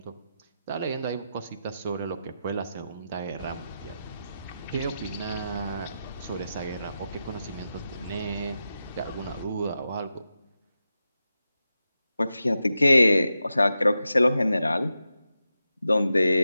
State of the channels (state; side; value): inverted; both; correlation -0.89